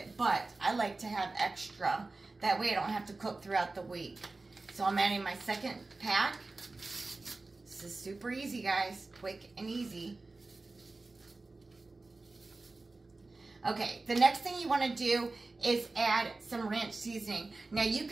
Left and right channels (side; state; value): left; quieter; 3.4 dB